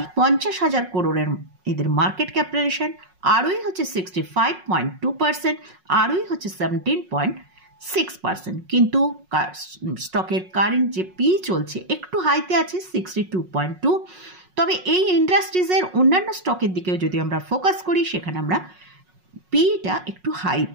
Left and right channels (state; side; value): late; left; 5.5 ms